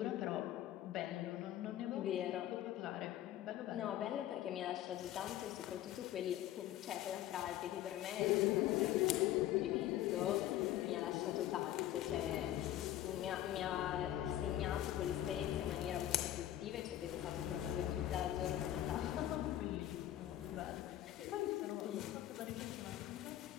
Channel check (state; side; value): quieter; right; 13.0 dB